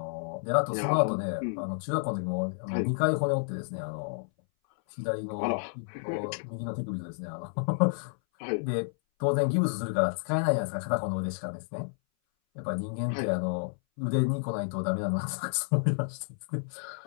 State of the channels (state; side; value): silent; right; 58 dB below the other